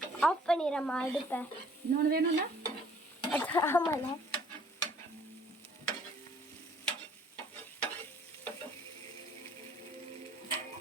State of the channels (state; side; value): normal; both; correlation 0.57